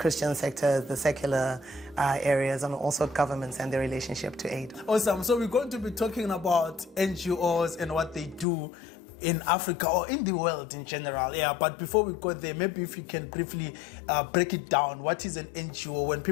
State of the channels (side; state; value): right; drops out; at 8.5 s